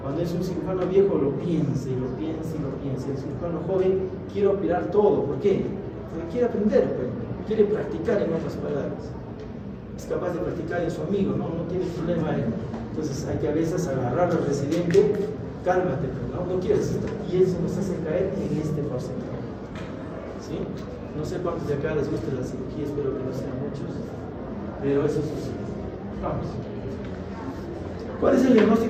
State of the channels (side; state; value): both; identical; correlation 1.00